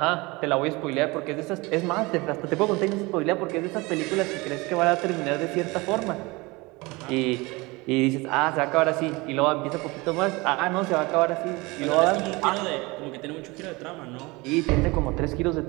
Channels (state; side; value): quieter; left; 24.0 dB